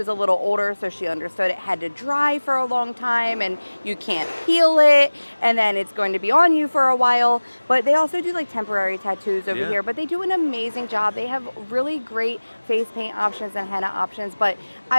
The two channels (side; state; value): both; inverted; correlation -1.00